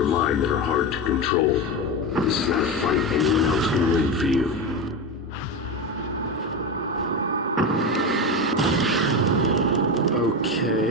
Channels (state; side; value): normal; both; correlation 0.18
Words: mind that are hard to control. This is not a fight anyone else can win for you.